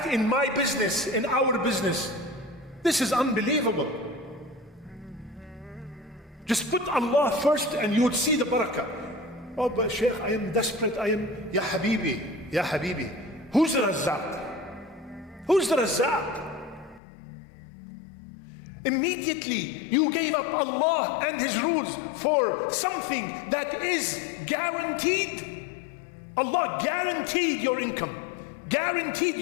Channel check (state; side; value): drops out; right; at 17.0 s